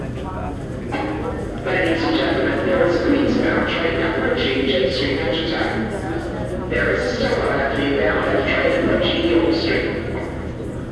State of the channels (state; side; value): identical; both; correlation 1.00